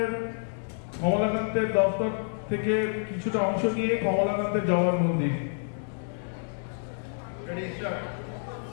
কমলাকান্তের দপ্তর থেকে কিছুটা অংশ নিয়ে কমলাকান্তের জওয়ার মন্দির।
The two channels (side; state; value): right; silent; digital silence